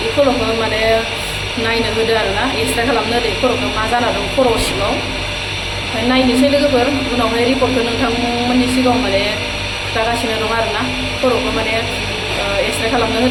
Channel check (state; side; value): identical; both; correlation 1.00